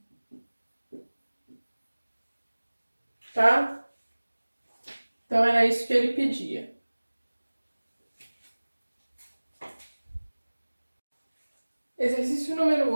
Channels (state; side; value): inverted; both; correlation -1.00